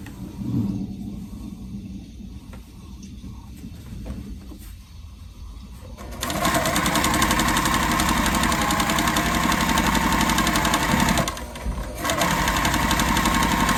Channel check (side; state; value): both; identical; correlation 1.00